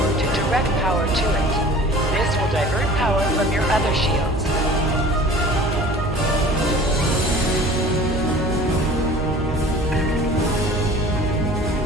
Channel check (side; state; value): right; noise; hum, 7 dB below the sound